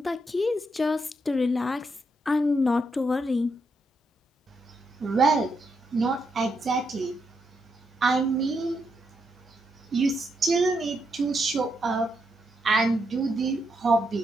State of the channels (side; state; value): both; normal; correlation 0.80